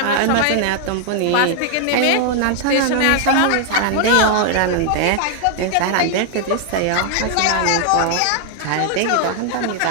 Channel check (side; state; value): both; different; correlation 0.00